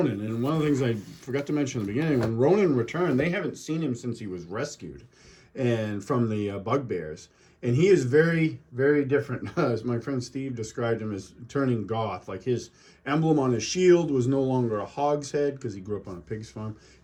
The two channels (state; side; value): identical; both; correlation 1.00